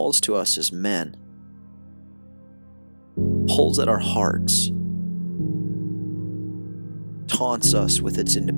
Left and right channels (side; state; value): both; inverted; correlation -1.00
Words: to us as men? Pulls at our hearts, taunts us with its